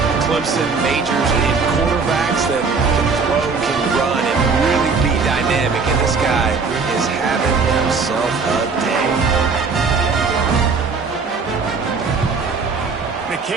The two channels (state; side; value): quieter; left; 4.8 dB